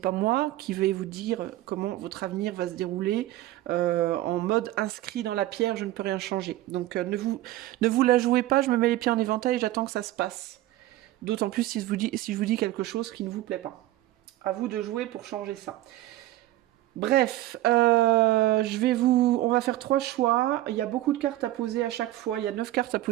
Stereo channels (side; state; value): left; quieter; 15.4 dB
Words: moi qui vais vous dire comment votre avenir va se dérouler en mode inscrit dans la pierre, je ne peux rien changer. Donc ne vous la jouez pas, je me mets les pieds en éventail et j'attends que ça se passe. D'autant plus si je vous dis quelque chose qui ne vous plaît pas. À vous de jouer pour changer ça. Bref, on va faire 3 choix. Il y a beaucoup de cartes à poser à chaque fois. Il y a 9 cartes à